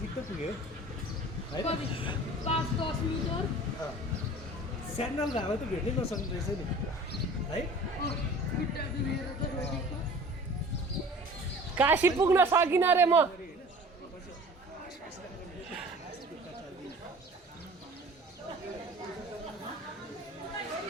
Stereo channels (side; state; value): both; normal; correlation 0.44